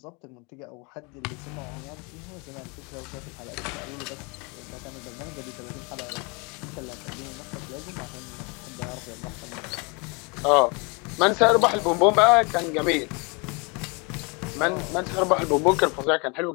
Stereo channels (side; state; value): right; quieter; 30.6 dB